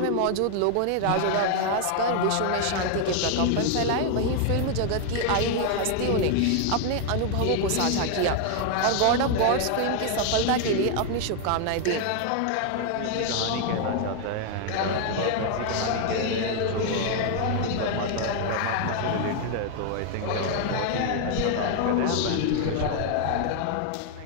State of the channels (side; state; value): both; different; correlation 0.00